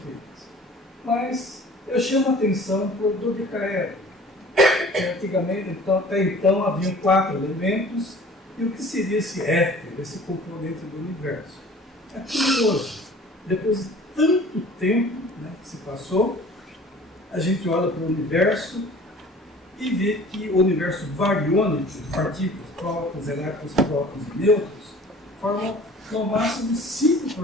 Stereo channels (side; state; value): both; normal; correlation 0.47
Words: Mas eu chamo a atenção para o dodecaedro. Antigamente, até então, haviam 4 elementos, e o que seria esse éter, esse componente do universo? É curioso. Depois de tanto tempo, né, que se passou, a gente olha para o universo e vê que o universo bariônico, de partículas, prótons, elétrons, prótons e nêutrons, formam no máximo